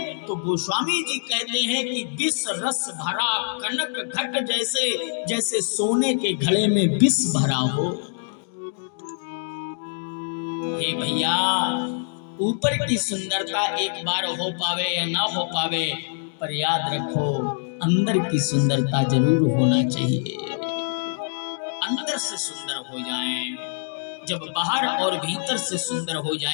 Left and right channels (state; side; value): silent; right; digital silence